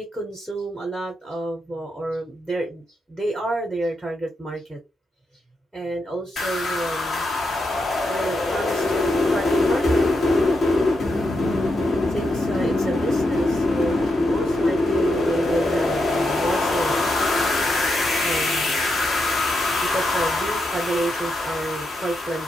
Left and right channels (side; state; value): both; normal; correlation 0.84